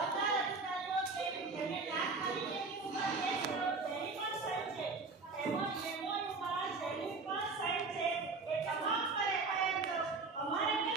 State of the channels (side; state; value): left; quieter; 4.0 dB